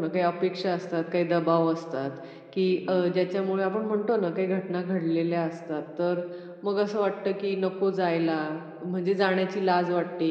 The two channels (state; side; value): identical; both; correlation 1.00